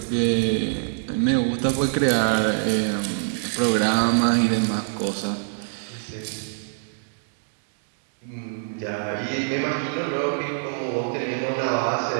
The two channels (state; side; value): silent; left; digital silence